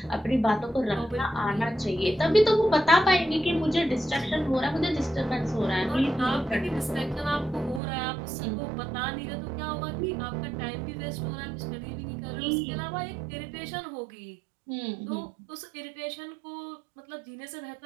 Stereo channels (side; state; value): left; drops out; at 7.8 s